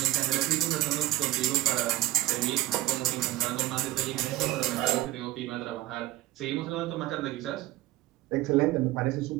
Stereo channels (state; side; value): quieter; left; 16.4 dB